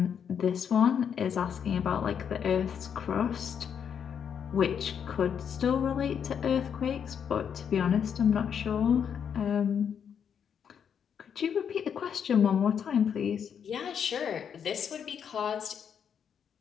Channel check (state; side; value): quieter; right; 7.8 dB